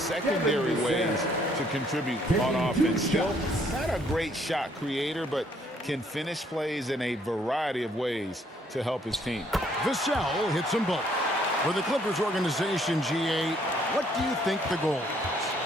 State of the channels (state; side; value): normal; both; correlation 0.66